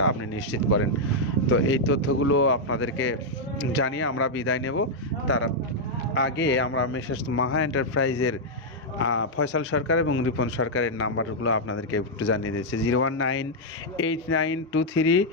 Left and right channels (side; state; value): both; normal; correlation -0.03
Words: আপনি নিশ্চিত করেন। তো এই তথ্যগুলো আপনাদেরকে জানিয়ে আমরা বিদায় নেব। তার আগে আমরা মেসেজ মাহা এন্টারপ্রাইজের ফয়সাল সরকার এবং রিপন সরকারের নাম্বারগুলো আপনাদেরকে একটু জানিয়ে দিয়েছে।